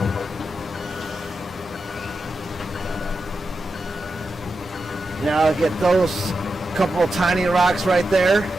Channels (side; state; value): both; normal; correlation 0.89